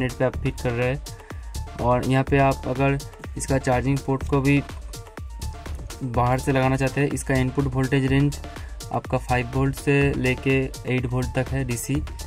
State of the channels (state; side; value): identical; both; correlation 1.00